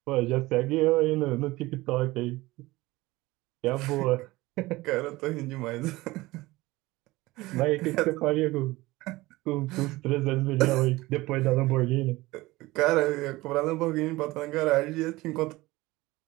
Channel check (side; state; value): left; quieter; 19.7 dB